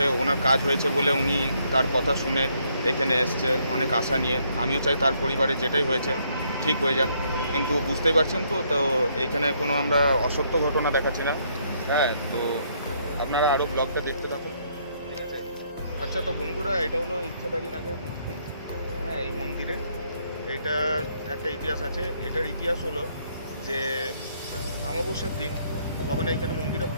ওনার কাজ হয়েছে বলে উনি তার কথা শুনে এখানে এসছে অনেক আশা নিয়ে। আমিও চাই তার পরিবারে যেটাই হয়েছে ঠিক হয়ে যাক, কিন্তু বুঝতেই পারছেন তো, তো এইখানে কোনো আমরা অসত্য ঘটনা দেখাচ্ছি না। হ্যাঁ, তো আপনারা আরও ব্লগটা দেখতে থাকুন, ঠিক আছে। আচ্ছা, তো বন্ধুরা, এটা হলো ইচ্ছাধারী নাগের মূর্তি। হ্যাঁ, এই মন্দিরে এইটার একটা ইতিহাস আছে। এটার ইতিহাস হলো যে অমাবস্যার দিন যখন এইখানে মন্দিরে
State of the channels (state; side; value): inverted; both; correlation -0.70